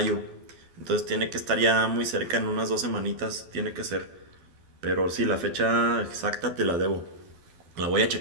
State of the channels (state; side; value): late; left; 12 ms